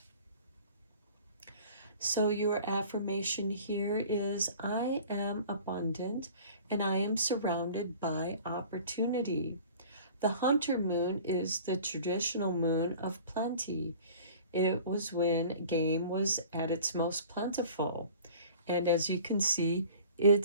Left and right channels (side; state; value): both; inverted; correlation -0.45